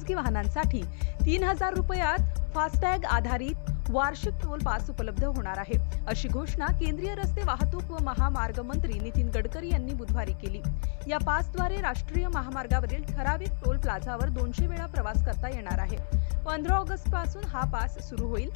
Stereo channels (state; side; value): silent; right; 58 dB below the other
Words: वाहनांसाठी 3000 रुपयात फास्टॅग आधारित वार्षिक टोल पास उपलब्ध होणार आहे, अशी घोषणा केंद्रीय रस्ते वाहतूक व महामार्ग मंत्री नितीन गडकरी यांनी बुधवारी केली. या पासद्वारे राष्ट्रीय महामार्गावरील ठराविक टोल प्लाझावर 200 वेळा प्रवास करता येणार आहे. 15 ऑगस्ट पासून हा पास सुरू होईल.